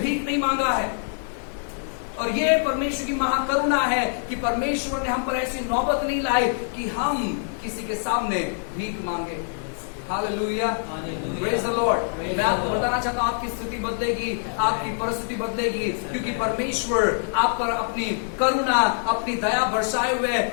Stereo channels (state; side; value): silent; right; 62 dB below the other